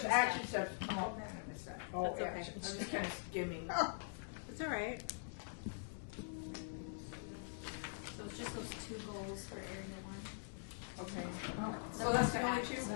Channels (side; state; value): right; silent; digital silence